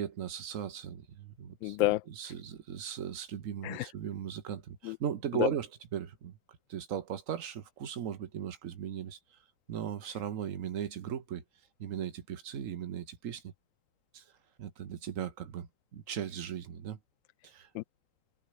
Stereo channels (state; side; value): late; left; 3.8 ms